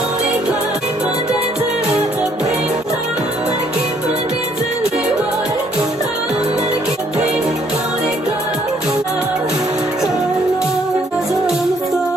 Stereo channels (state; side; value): normal; both; correlation 0.66